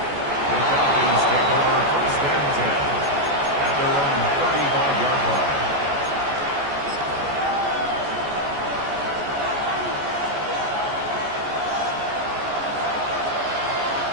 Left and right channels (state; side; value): late; left; 14 ms